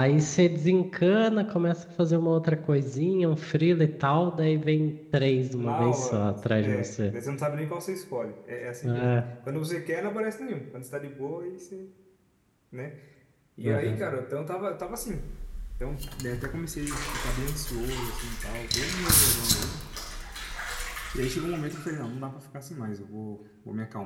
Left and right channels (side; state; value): both; identical; correlation 1.00